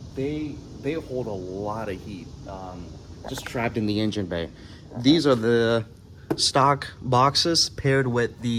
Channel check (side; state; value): both; identical; correlation 1.00